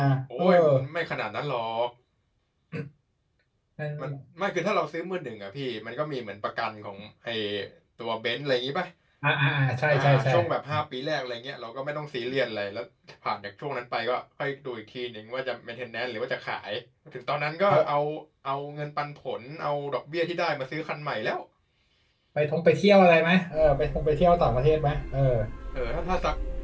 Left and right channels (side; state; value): both; identical; correlation 1.00